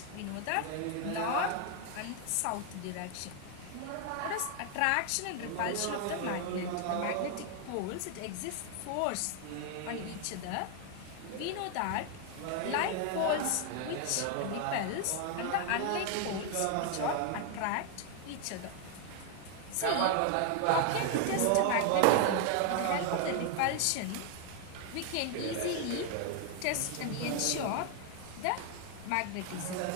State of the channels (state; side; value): different; both; correlation 0.00